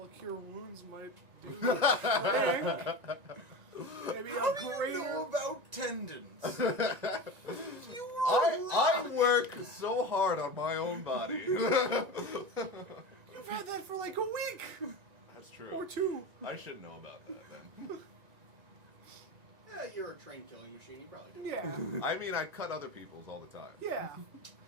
of cure wounds might do the trick. Maybe How a do you greater. know about tendons? I work so hard on my own body. You've had that for like a week That's true. or two. I should know about that then. Yeah, you're a trained killing machine. You probably do. Yeah, I mean, I cut other people's all the time. yeah.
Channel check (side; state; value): left; late; 1.9 ms